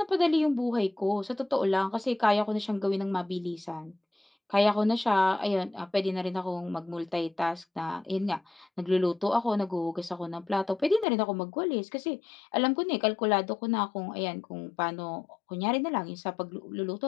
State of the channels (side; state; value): right; drops out; at 11.1 s